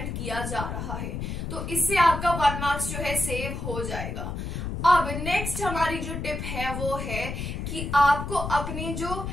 किया जा रहा है। तो इससे आपका 1 मार्क्स जो है सेव हो जाएगा। अब नेक्स्ट हमारी जो टिप है वो है कि आपको अपने जो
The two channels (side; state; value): left; noise; rumble, 5 dB below the sound